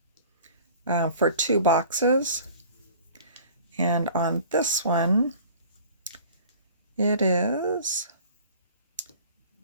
for 2 boxes. And on this one, it is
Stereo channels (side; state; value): both; inverted; correlation -0.47